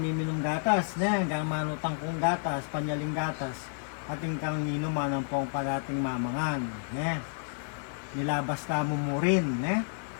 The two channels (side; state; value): right; silent; digital silence